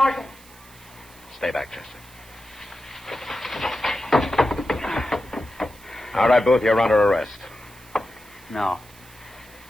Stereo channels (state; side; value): noise; right; hiss, 23 dB below the sound